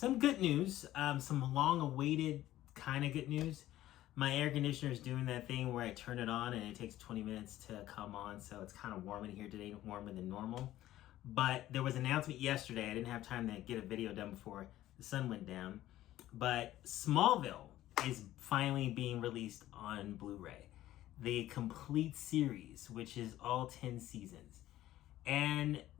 good news, some long-awaited kind of good news. My air conditioner is doing that thing where I turn it on and it takes 20 minutes to come on, so it's kind of warm in here today, warmer than normal. But there was an announcement yesterday. I didn't have time to get a video done before the sun went down. But Smallville is finally being released on Blu-ray. The complete series, which is all 10 seasons. And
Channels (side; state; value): right; quieter; 14.3 dB